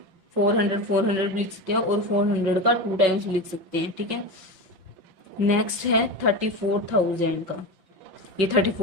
400 भी लिख सकते हैं और 400 का 2 टाइम्स भी लिख सकते हैं, ठीक है। नेक्स्ट है 34,000 का। ये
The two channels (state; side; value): late; left; 5.8 ms